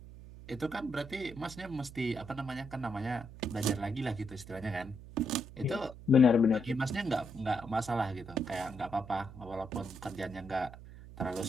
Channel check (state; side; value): noise; right; hum, 15 dB below the sound